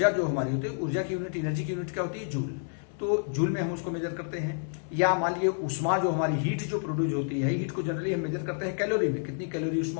जो हमारी होती है, ऊर्जा की यूनिट, एनर्जी की यूनिट क्या होती है? जूल। तो जूल में हम उसको मेजर करते हैं। या मान लीजिए उष्मा जो हमारी हीट जो प्रोड्यूस होती है, हीट को जनरली हम मेजर करते हैं कैलोरी में, कितनी कैलोरी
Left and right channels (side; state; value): right; silent; digital silence